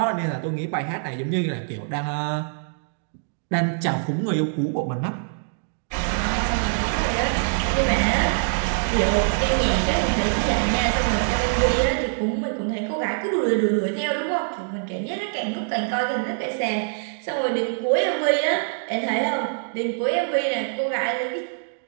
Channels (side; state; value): left; silent; digital silence